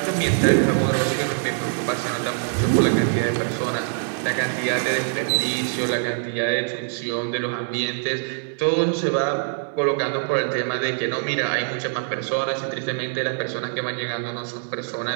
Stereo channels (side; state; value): left; silent; digital silence